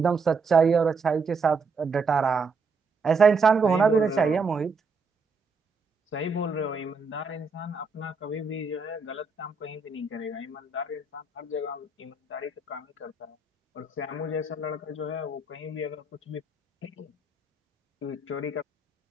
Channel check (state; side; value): quieter; left; 4.1 dB